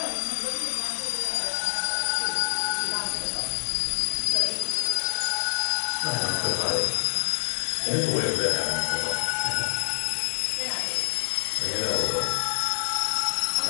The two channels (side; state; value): right; silent; digital silence